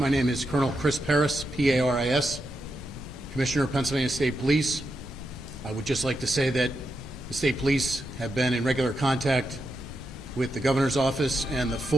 name is Colonel Chris Paris, P-A-R-I-S, Commissioner of Pennsylvania State Police. I would just like to say that the State Police have been in regular contact with the Governor's Office, and the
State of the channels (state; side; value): noise; left; rumble, 14 dB below the sound